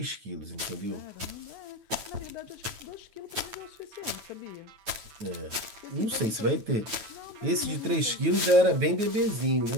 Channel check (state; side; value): late; left; 9.0 ms